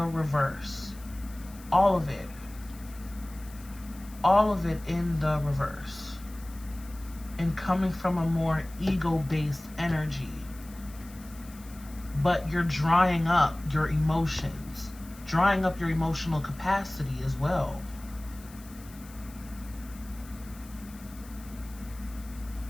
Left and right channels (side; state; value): left; noise; hiss, 21 dB below the sound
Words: reverse. All of it. All of it in the reverse. And coming from a more ego-based energy. But you're drying up your emotions. Drying up your emotional capacity as well.